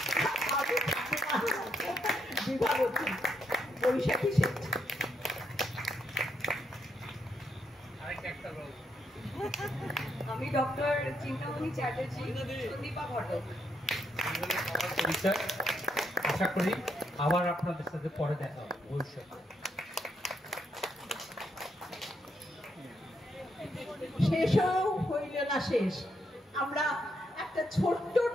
বিভাবতী, বৈশাখী শেঠ। আমি ডক্টর চিন্তামণি চ্যাটার্জি, সন্দীপা ঘটক। পরিচয়। আশা করি আবার আপনাদের সাথে পরে দেখা হবে ভবিষ্যতে। শেষও হইল না শেষ। আমরা একটা ছোট্ট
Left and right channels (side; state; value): both; normal; correlation 0.78